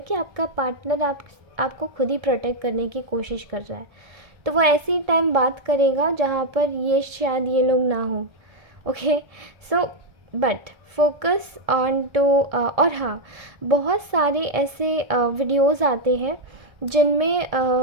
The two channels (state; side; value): late; left; 1.6 ms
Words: कि आपका पार्टनर आपको खुद ही प्रोटेक्ट करने की कोशिश कर रहा है। तो वो ऐसी टाइम बात करेगा जहाँ पर ये शायद ये लोग ना हो। Okay, so but focus on to. और हाँ, बहुत सारे ऐसे वीडियोज़ आते हैं जिनमें